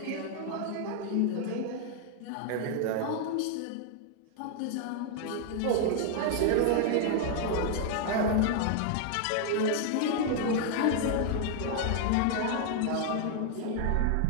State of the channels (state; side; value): different; both; correlation 0.00